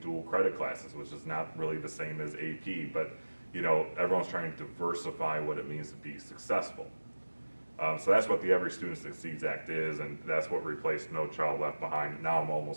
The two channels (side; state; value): both; inverted; correlation -1.00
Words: dual credit classes, which is not really the same as AP, but, everyone's trying to diversify what it means to be successful. So that's what the Every Student Succeeds Act is, and that's what replaced No Child Left Behind. Now I'm